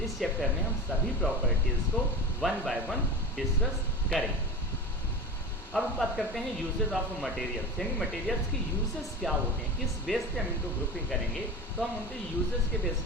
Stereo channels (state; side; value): normal; both; correlation 0.29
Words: इस चैप्टर में हम सभी प्रॉपर्टीज़ को वन बाय वन डिस्कस करेंगे। अब हम बात करते हैं यूजेस ऑफ मटेरियल्स, यानी मटेरियल्स के यूजेस क्या होते हैं, किस बेस पे हम इनको ग्रुपिंग करेंगे, तो हम उनके यूजेस के बेस